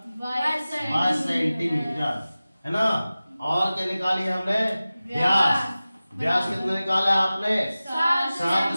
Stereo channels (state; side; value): inverted; both; correlation -0.96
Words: 22 सेंटीमीटर है ना। और क्या निकाली है हमने व्यास, व्यास कितना निकाला है आपने